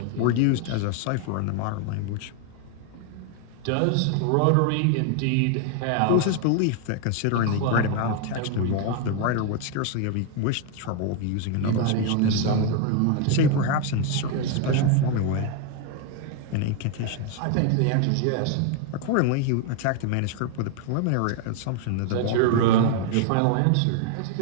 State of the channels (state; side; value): different; both; correlation 0.01